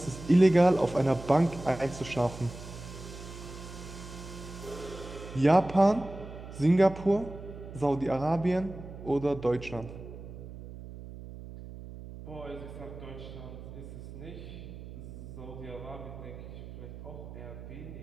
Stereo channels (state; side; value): noise; right; hum, 13 dB below the sound